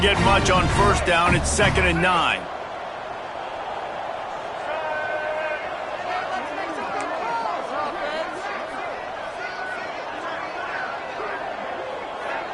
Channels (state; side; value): identical; both; correlation 1.00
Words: much on first down. It's 2nd and 9.